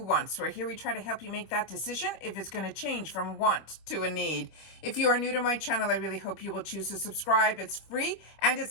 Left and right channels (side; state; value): right; late; 25 ms